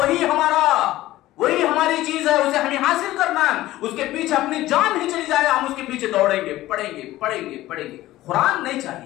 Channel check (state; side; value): quieter; right; 16.0 dB